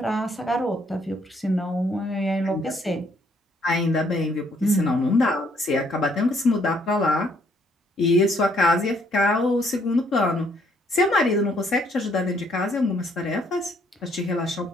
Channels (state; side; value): normal; both; correlation 0.67